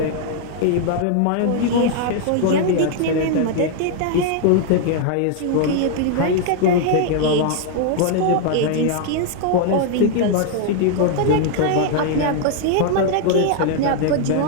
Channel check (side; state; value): both; different; correlation 0.00